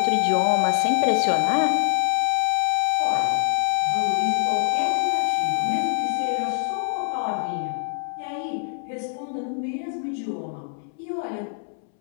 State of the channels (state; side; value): silent; right; 63 dB below the other